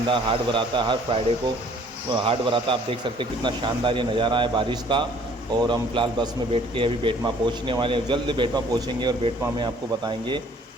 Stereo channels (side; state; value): both; normal; correlation 0.57